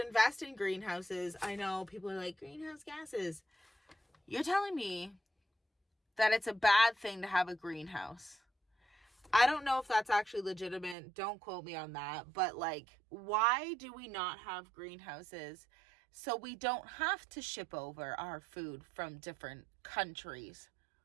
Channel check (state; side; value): drops out; left; at 11.0 s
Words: in greenhouses. I know people are like, greenhouse gases. You're telling me that it's a bad thing to have a greenhouse. I don't know if that's actually legitimate. Don't quote me on that. But, like, why do we not have greenhouses so we don't have to ship over our food from different countries?